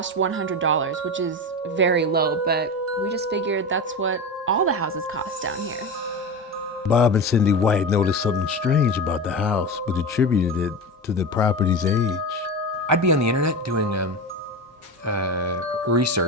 $100, which is very low, but we just figured that's what all the houses cost down here. Bob and Cindy White noticed something strange about the house, but attributed it to the property's age. I'd be on the internet doing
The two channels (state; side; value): normal; both; correlation 0.24